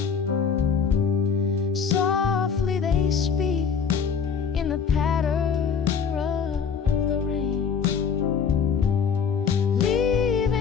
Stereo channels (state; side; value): quieter; right; 6.4 dB